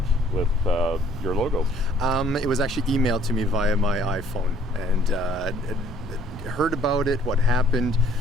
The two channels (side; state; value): both; normal; correlation 0.59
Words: with your logo. It was actually emailed to me via my iPhone, and heard about it, what happened.